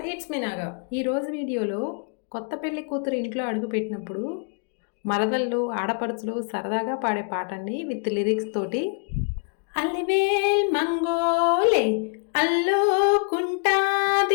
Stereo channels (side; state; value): right; quieter; 39.1 dB